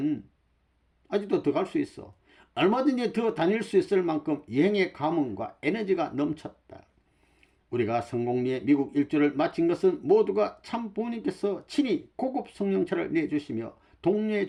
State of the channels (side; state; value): both; identical; correlation 1.00